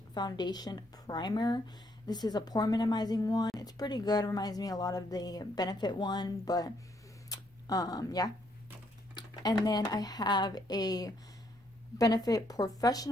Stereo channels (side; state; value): both; normal; correlation 0.72